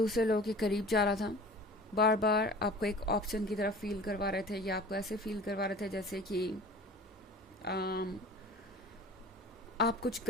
लोगों के करीब जा रहा था, बार बार आपको एक ऑप्शन की तरफ फील करवा रहे थे या आपको ऐसे फील करवा रहे थे जैसे कि आप कुछ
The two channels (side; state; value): both; normal; correlation 0.43